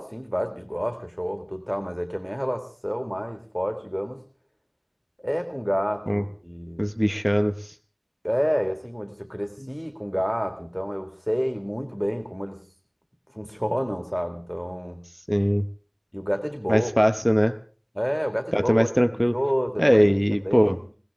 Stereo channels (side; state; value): both; identical; correlation 1.00